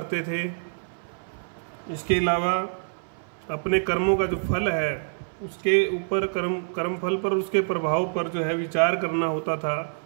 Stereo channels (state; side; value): silent; left; 58 dB below the other